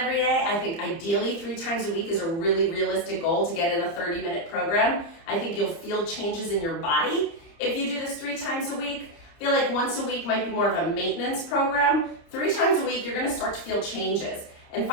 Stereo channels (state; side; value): late; right; 29 ms